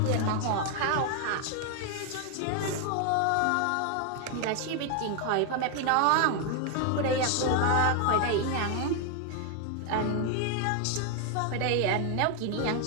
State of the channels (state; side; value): different; both; correlation 0.01